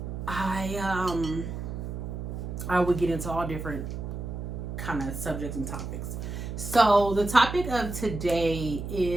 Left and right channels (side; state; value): right; noise; hum, 6 dB below the sound